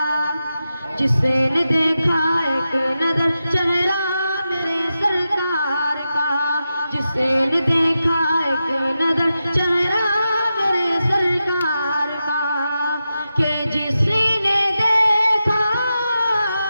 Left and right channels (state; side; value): inverted; both; correlation -0.90